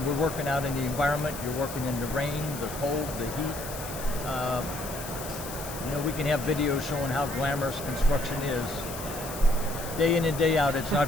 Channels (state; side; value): noise; left; hiss, 11 dB below the sound